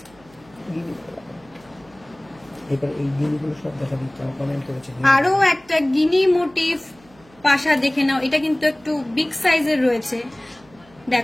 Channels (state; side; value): noise; right; hum, 28 dB below the sound